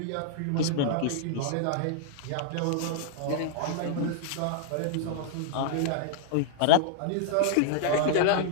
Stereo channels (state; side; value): different; both; correlation -0.01